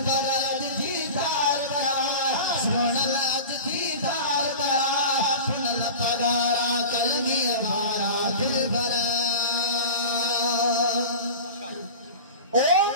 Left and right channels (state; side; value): inverted; both; correlation -0.33